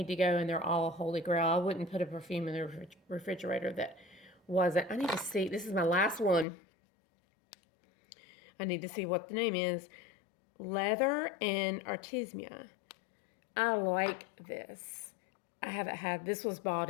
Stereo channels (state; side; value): drops out; right; at 6.5 s